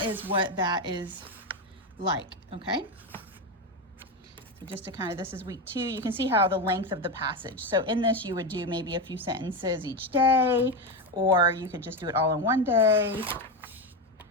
is what that is like, okay? So just to kind of, this is week 2. You can see how the length of the passage. So in this, you would do maybe a few sentences each day, or you could just do it all in one day.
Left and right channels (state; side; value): normal; both; correlation 0.13